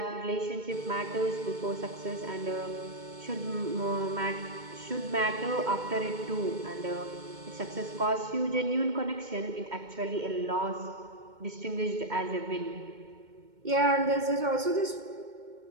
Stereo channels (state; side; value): late; left; 2.2 ms